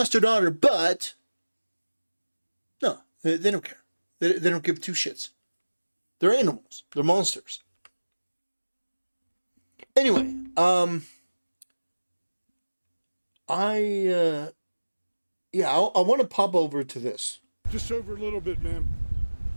her daughter, but no, they don't care. They don't give two shits. They're animals. They're monsters. Anyway, I want to pop over to this. Just over a little bit, ma'am.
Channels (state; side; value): inverted; both; correlation -1.00